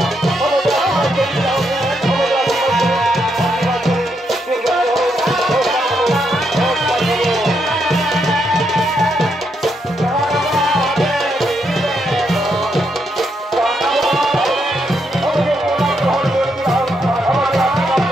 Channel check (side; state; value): both; normal; correlation 0.79